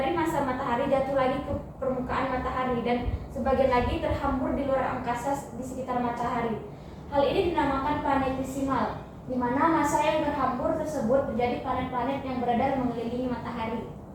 massa matahari jatuh lagi ke permukaan matahari dan sebagian lagi terhambur di luar angkasa di sekitar matahari. Hal ini dinamakan planetesimal, di mana massa yang terhambur tersebut menjadi planet-planet yang beredar mengelilingi matahari.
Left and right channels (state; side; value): identical; both; correlation 1.00